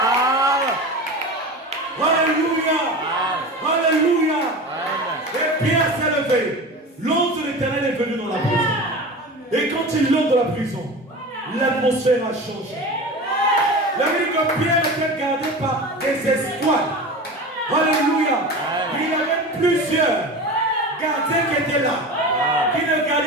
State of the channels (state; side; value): normal; both; correlation 0.31